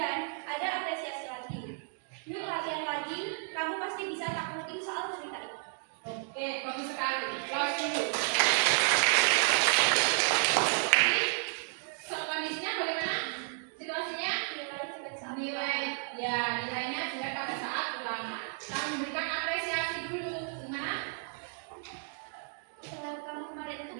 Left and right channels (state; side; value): silent; left; 56 dB below the other